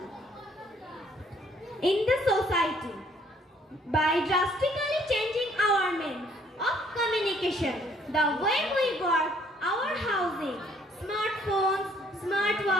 in the society? By drastically changing our means of communication, the way we work, our housing, smartphones,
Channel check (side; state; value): both; normal; correlation 0.63